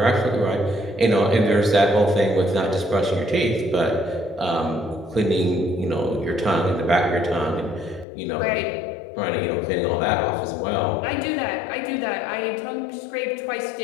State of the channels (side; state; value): right; drops out; at 8.1 s